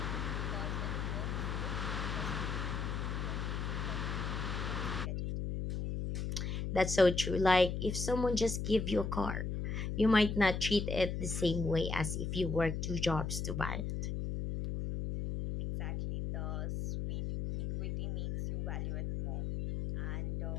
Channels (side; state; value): left; noise; hum, 2 dB below the sound